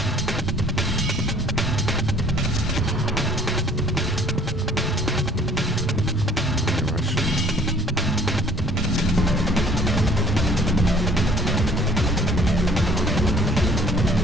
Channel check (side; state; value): both; normal; correlation 0.56